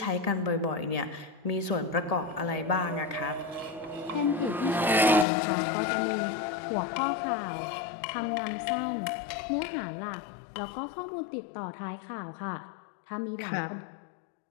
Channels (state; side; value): drops out; right; at 5.2 s